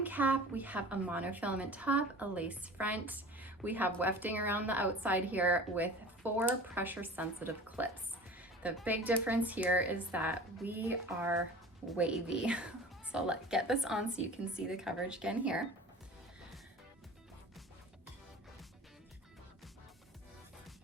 cap, we have a monofilament top, a lace front. We have wefting around the outside here with 4 pressure sensitive clips. The big difference here is that we are wavy. So let's get this on so you can see the coverage again here.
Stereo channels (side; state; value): both; normal; correlation 0.40